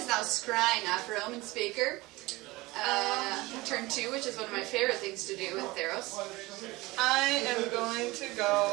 now scrying after Omen Speaker. Turn 2, which is one of my favorite things to do in Theros. I am going to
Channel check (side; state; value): left; quieter; 21.2 dB